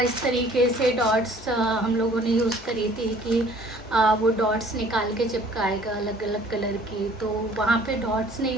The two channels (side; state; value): both; normal; correlation 0.54